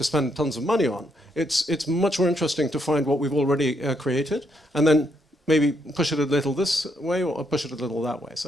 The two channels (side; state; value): both; normal; correlation 0.76